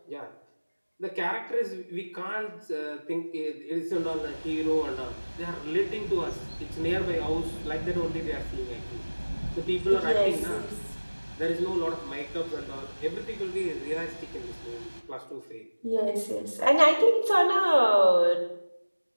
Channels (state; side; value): inverted; both; correlation -1.00